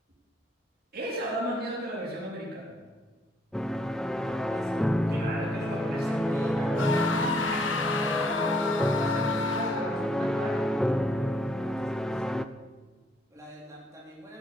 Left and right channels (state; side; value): normal; both; correlation 0.69